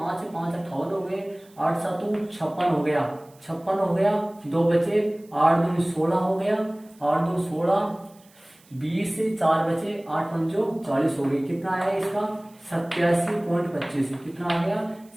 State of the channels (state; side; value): noise; right; hiss, 29 dB below the sound